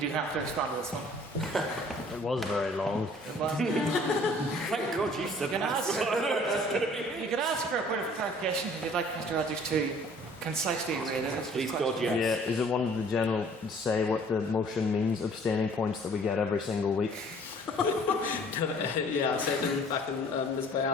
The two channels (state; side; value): normal; both; correlation 0.54